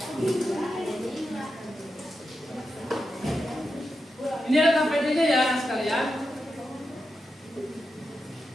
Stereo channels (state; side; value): normal; both; correlation 0.88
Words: Ini LKPD-nya ya sekalian.